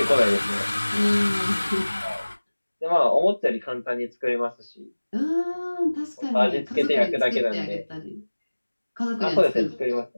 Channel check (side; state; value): both; inverted; correlation -1.00